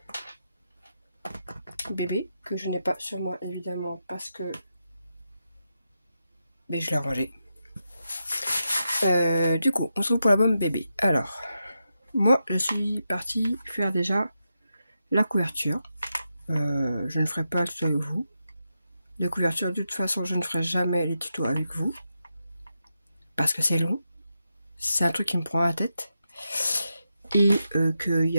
bébé, que je n'ai pas sur moi évidemment parce que je l'ai rangé. Du coup, on se retrouve pour l'album bébé. Alors, moi je suis partie faire déjà la couverture. Je ne ferai pas le tuto avec vous. De couverture, de toute façon, je ne ferai jamais les tutos avec vous. Parce que c'est long. C'est un truc qui me prend la tête. Et qu'il y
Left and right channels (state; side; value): inverted; both; correlation -0.87